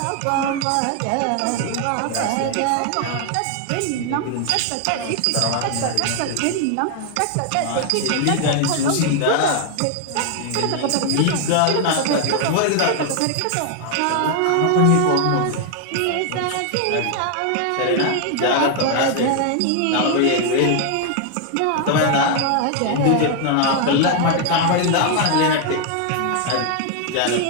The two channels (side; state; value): both; different; correlation 0.00